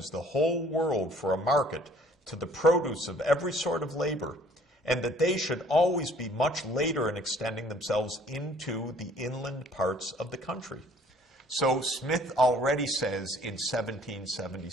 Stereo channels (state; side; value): normal; both; correlation 0.57